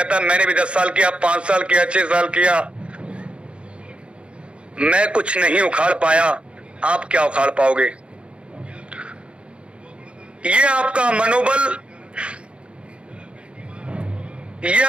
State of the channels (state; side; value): late; left; 0.058 ms